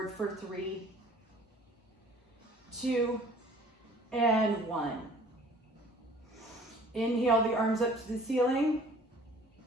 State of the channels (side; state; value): both; normal; correlation 0.52